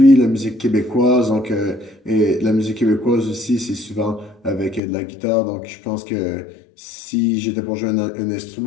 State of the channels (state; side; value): drops out; right; at 4.8 s